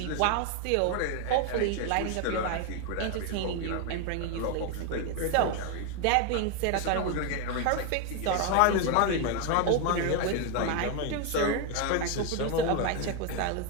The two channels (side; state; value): both; different; correlation 0.01